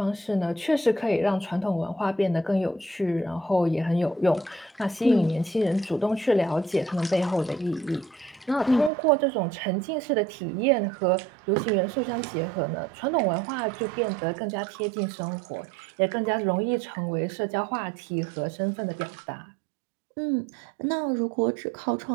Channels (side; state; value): left; drops out; at 8.9 s